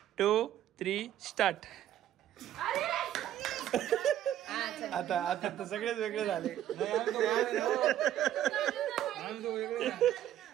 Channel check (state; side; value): quieter; left; 11.8 dB